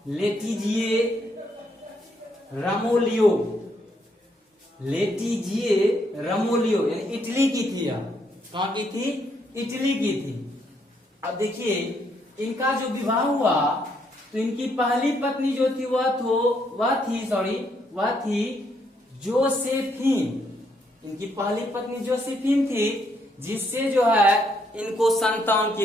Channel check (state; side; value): normal; both; correlation 0.74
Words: लेटिजिए रमोलियो यानी इटली की थी। कहाँ की थी? इटली की थी। अब देखिए, इनका जो विवाह हुआ तो इनकी पहली पत्नी जो थी वह थी जोसेफिन। इनकी पहली पत्नी जोसेफिन थी, जिससे जो है इनको संतान